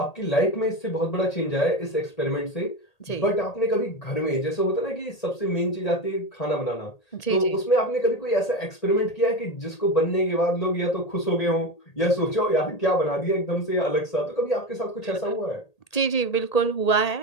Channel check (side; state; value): right; late; 1.8 ms